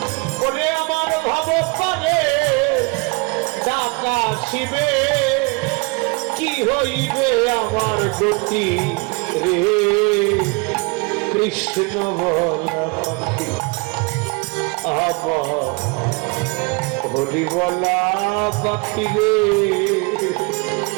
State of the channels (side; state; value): left; quieter; 28.8 dB